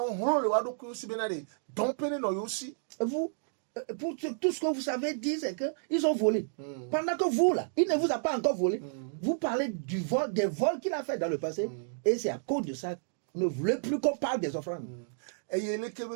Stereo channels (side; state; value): left; silent; digital silence